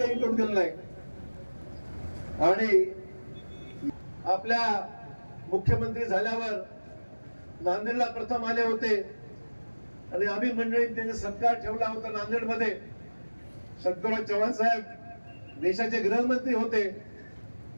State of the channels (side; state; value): both; inverted; correlation -1.00